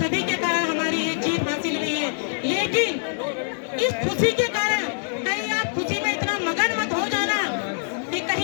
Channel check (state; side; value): silent; right; digital silence